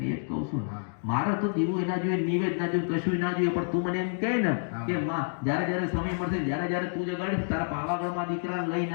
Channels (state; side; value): silent; right; digital silence